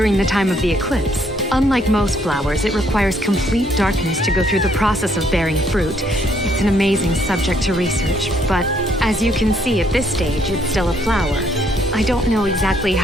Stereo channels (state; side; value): normal; both; correlation 0.68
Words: the time of the eclipse. Unlike most flowers, it requires complete darkness to go through the process of bearing fruit. It's an amazing subject to research, but as you can see at this stage, it's still a flower. I don't know exactly